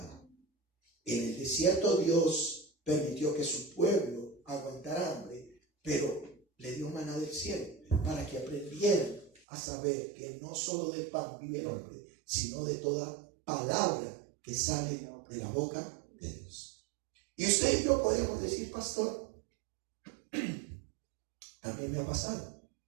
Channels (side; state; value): left; drops out; at 9.4 s